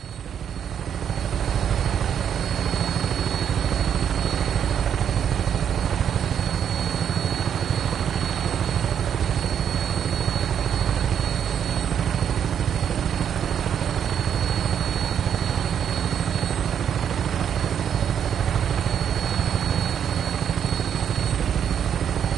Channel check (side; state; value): left; quieter; 8.6 dB